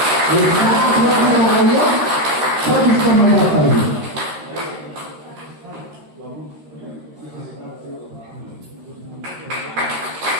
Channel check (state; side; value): late; left; 13 ms